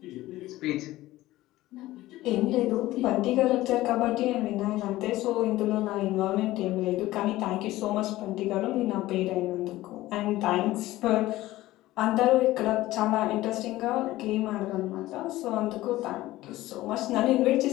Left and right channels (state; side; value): quieter; right; 16.7 dB